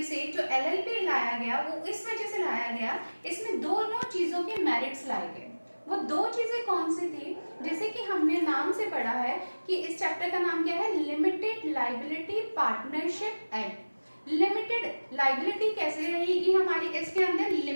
से जो LLP लाया गया वो इस वजह से लाया गया, इसमें दोनों चीजों के मेरिट्स लाए गए। वो दो चीजें कौन सी थी, जैसे कि हमने नाम से पढ़ा है कि इस चैप्टर का नाम क्या है, limited liability partnership act. Limited liability कैसे रहेगी हमारी, इसके अंदर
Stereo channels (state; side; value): inverted; both; correlation -1.00